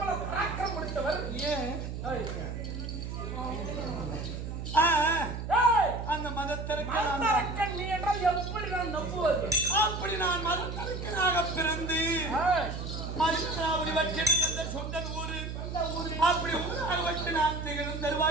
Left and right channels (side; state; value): right; noise; hum, 6 dB below the sound